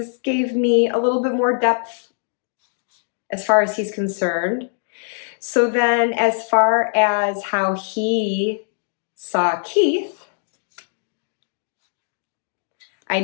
gave me a little bit more depth as far as he's concerned. So then as far as how he saw Keith, I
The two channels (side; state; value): right; silent; digital silence